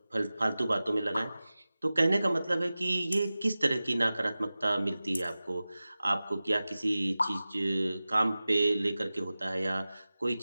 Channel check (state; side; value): inverted; both; correlation -0.96